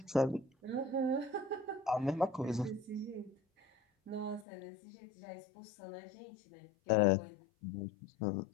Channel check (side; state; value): right; drops out; at 4.5 s